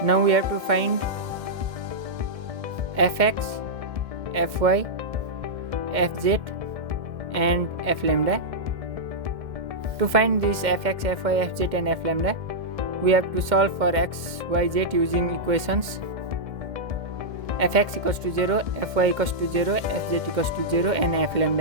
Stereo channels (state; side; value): late; left; 2.1 ms